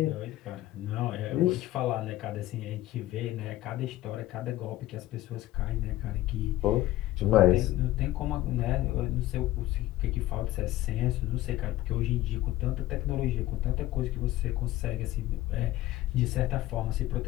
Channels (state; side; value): quieter; right; 15.7 dB